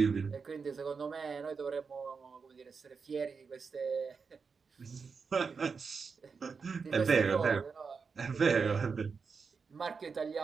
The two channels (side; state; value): left; quieter; 5.3 dB